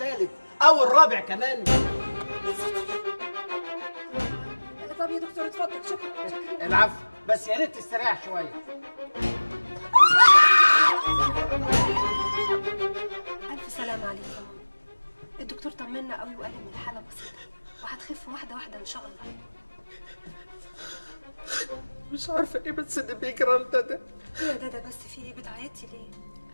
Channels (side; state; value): both; inverted; correlation -1.00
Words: او الرابع كمان؟ طب يا دكتور اتفضل. شكرا. العفو، بس يا ريت تستريح شوية. ألف سلامة عليك يا ماما. الدكتور طمنا قوي وقال إن الحالة بسيطة وهتخف واحدة واحدة إن شاء الله. مش عارفه ايه بس اللي بيجرى لنا ده. ايه يا دادا بس في ايه؟ بتعيطي ليه؟